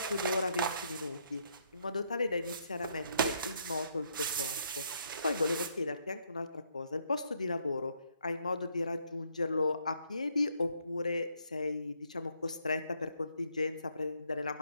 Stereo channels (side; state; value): both; inverted; correlation -0.72